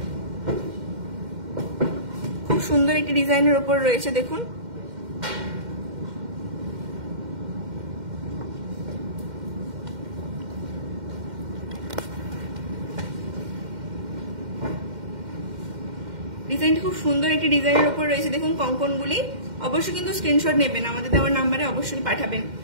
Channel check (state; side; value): late; left; 2.1 ms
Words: খুব সুন্দর একটি ডিজাইনের উপর রয়েছে। দেখুন ডিজাইনটি খুব সুন্দর একটি ডিজাইনের উপর রয়েছে। দেখুন কঙ্কনগুলি, অবশ্যই কিন্তু স্ক্রিনশট নেবেন, আমাদের দেওয়ার নাম্বারে অবশ্যই পাঠাবেন।